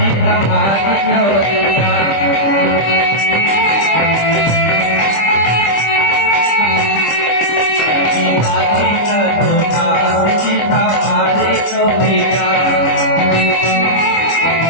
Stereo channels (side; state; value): right; late; 25 ms